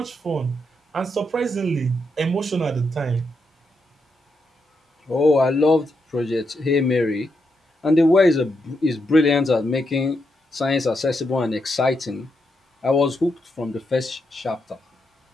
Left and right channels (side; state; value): both; normal; correlation 0.82